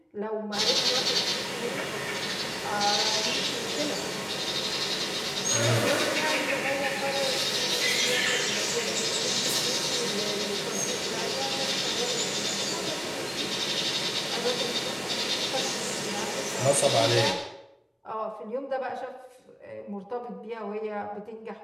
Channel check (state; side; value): identical; both; correlation 1.00